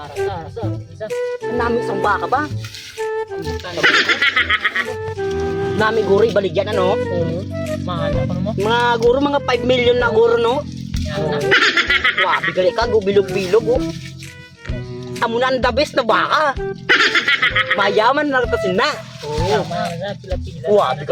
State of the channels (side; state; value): both; identical; correlation 1.00